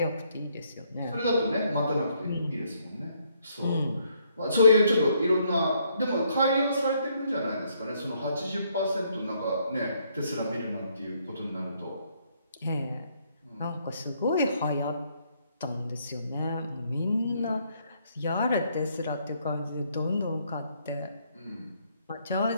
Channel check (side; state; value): both; inverted; correlation -0.70